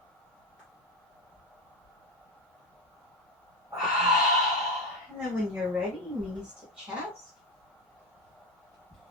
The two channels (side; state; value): both; normal; correlation 0.15